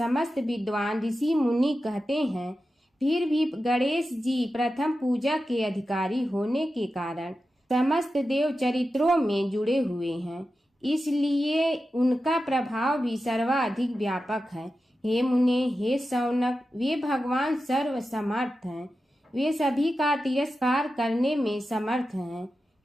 विद्वान ऋषि मुनि कहते हैं। फिर भी गणेश जी प्रथम पूजा के अधिकारी होने के कारण समस्त देव चरित्रों में जुड़े हुए हैं, इसलिए उनका प्रभाव भी सर्वाधिक व्यापक है। हे मुने, हे शौनक, वे भगवान सर्व समर्थ हैं। वे सभी का तिरस्कार करने में समर्थ हैं,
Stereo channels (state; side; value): normal; both; correlation 0.92